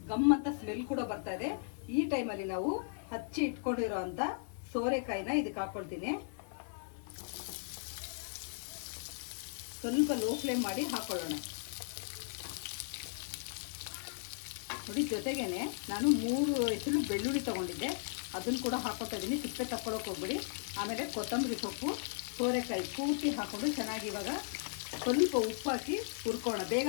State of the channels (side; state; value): right; silent; 53 dB below the other